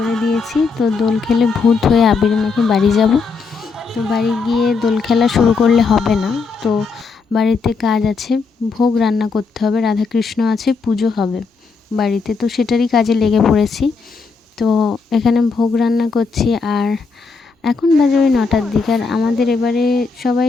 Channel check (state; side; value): quieter; right; 4.8 dB